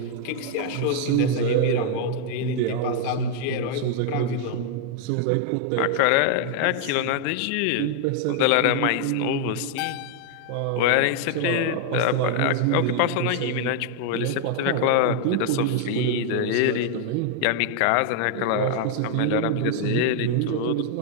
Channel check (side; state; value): both; different; correlation 0.00